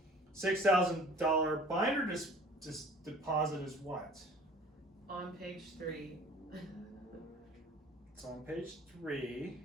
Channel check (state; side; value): normal; both; correlation 0.48